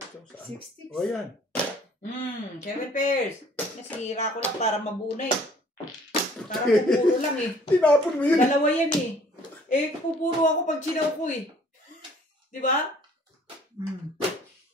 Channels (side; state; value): both; normal; correlation 0.55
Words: 60. O yan. 7 pairs. Nasira ko lang para mabunay. Para pupuro lang eh. Tinapon mo yun. Dalawa yan eh. Eh, pupuro ako pag sinaw ko eh. Di ba?